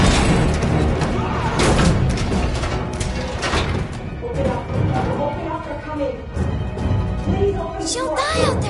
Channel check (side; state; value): both; identical; correlation 1.00